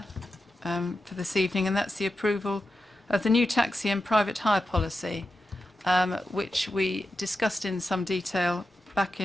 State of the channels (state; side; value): normal; both; correlation 0.90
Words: for this evening, and that's the approval of the new taxi and private hire policy, which we discussed in some detail back